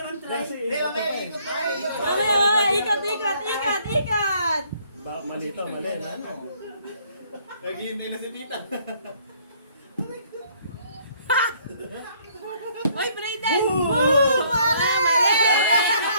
try? Hindi, mamaya, ikot na. Ikot, ikot, ikot, ikot! Mali to, mali. Ano? Naghihintay na si Tita. Oy, Brayden! Woo! Mali! Mali!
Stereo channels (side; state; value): both; inverted; correlation -0.63